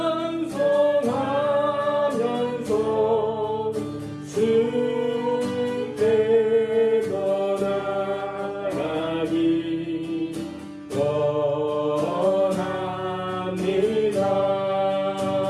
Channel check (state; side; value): identical; both; correlation 1.00